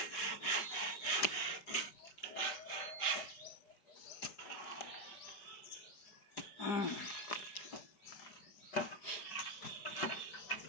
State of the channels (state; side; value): late; right; 5.6 ms